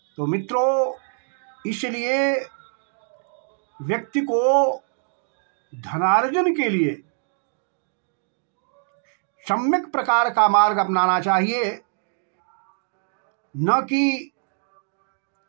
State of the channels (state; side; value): silent; left; digital silence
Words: तो मित्रों, इसलिए व्यक्ति को धनार्जन के लिए सम्यक प्रकार का मार्ग अपनाना चाहिए, न कि